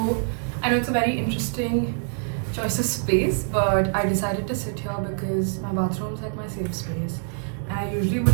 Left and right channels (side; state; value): left; silent; 59 dB below the other